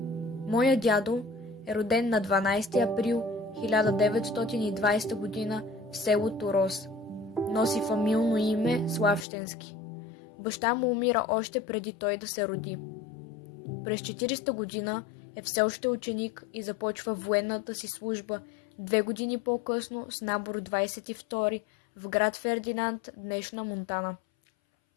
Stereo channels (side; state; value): right; drops out; at 9.2 s